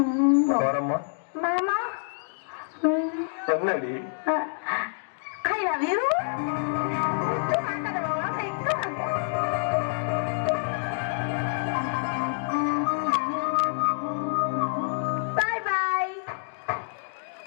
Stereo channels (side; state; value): right; silent; digital silence